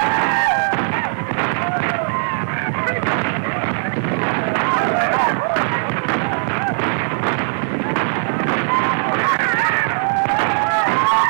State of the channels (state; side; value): silent; left; digital silence